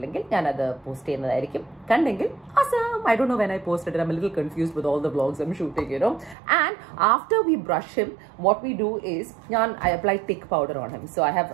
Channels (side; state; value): left; drops out; at 6.4 s